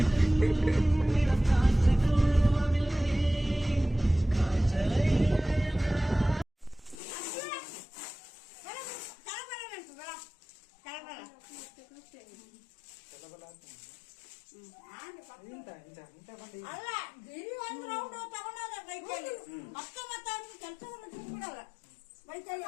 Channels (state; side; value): drops out; right; at 7.0 s